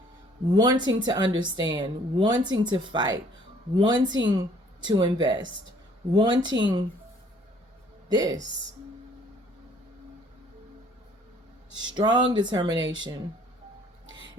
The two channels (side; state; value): both; normal; correlation 0.59